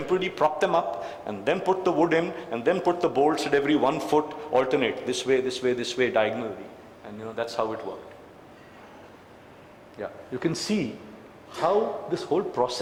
prop them up, and then put the wood in, and then put the bolts at every 1 foot, alternate, this way, this way, this way, diagonally. And that's how it worked. Yeah, you can see how this whole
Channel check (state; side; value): identical; both; correlation 1.00